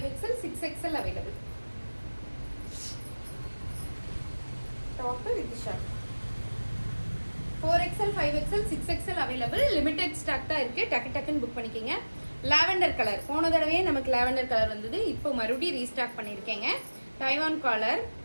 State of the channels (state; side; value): inverted; both; correlation -1.00